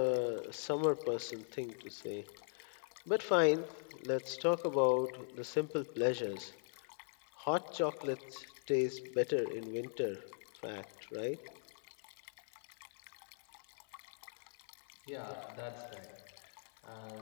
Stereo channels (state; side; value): silent; right; 51 dB below the other